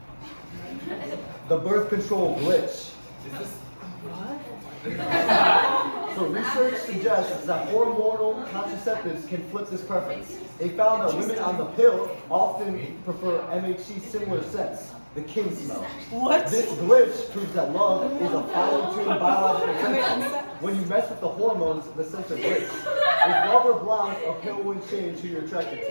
the birth control glitch. So research suggests that hormonal contraceptives can flip this preference. They found that women on the pill often prefer MHC similar scents, the king smell. What? This glitch proves that love is a fine-tuned biological sensor. When you mess with the hormones, the sensor glitch. If love or blind, a pill wouldn't change who you're attracted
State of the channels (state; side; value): inverted; both; correlation -1.00